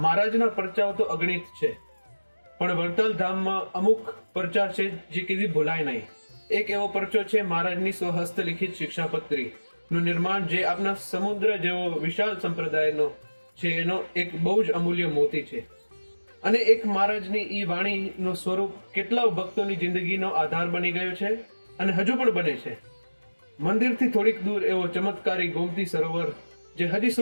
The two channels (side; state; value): both; inverted; correlation -1.00